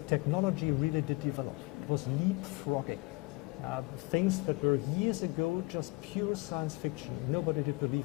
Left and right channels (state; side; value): quieter; right; 25.0 dB